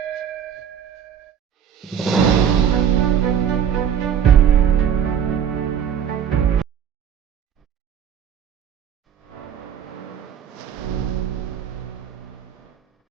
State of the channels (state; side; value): quieter; left; 8.6 dB